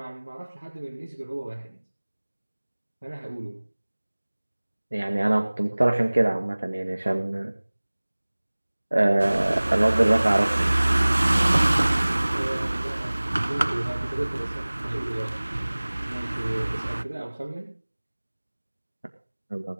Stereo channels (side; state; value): both; inverted; correlation -1.00